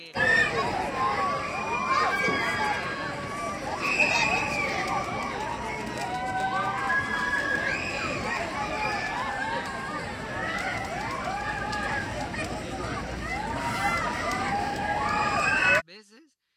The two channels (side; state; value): both; identical; correlation 1.00